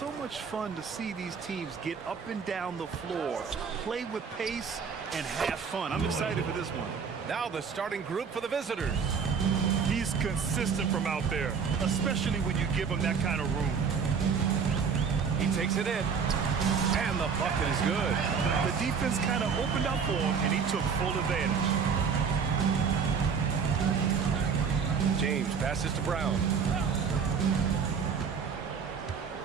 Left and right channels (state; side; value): quieter; left; 6.2 dB